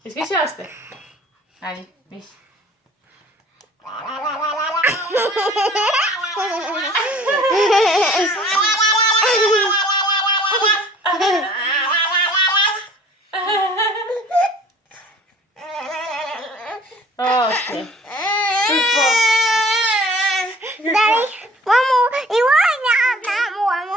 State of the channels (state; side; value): normal; both; correlation 0.51